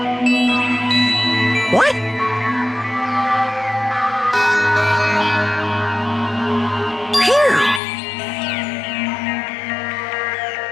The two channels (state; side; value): drops out; right; at 7.8 s